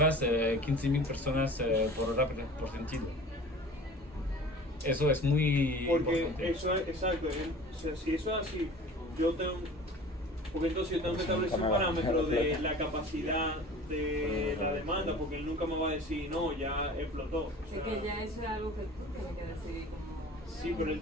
15.000 personas por hora por sentido. Eso es muy importante. Eso es exacto. O sea, si eso es así, porque entonces yo tengo que establecer un parámetro de la capacidad de la demanda, porque él nunca me va a decir, no, ya explotó. O sea, es que ya eso es algo que tiene que decidir como... Sí, pero él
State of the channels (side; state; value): both; normal; correlation 0.42